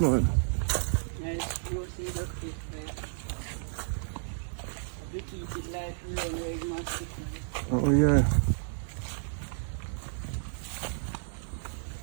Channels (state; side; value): silent; left; digital silence